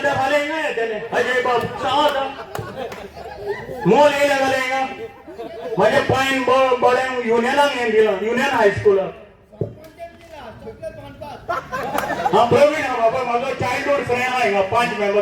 ते फाल्यां हिंगा येतले अजय बाब सांग आतां मोल येयले जाल्यार हिंगा म्हाजे पायन बड्यांक युनियनाक हें दिलां युनियन हायस्कुलाक हाँ प्रवीण हा बाबा माझा चाइल्डहुड फ्रेंड हा हिंगा 5 मेंबर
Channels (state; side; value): identical; both; correlation 1.00